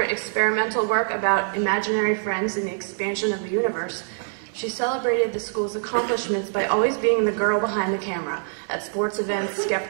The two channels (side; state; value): left; silent; 62 dB below the other